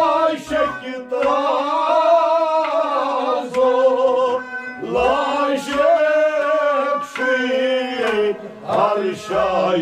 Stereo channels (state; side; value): identical; both; correlation 1.00